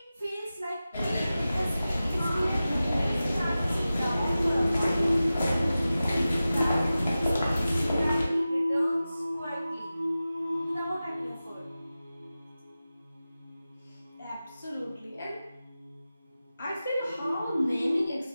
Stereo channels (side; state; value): both; inverted; correlation -0.95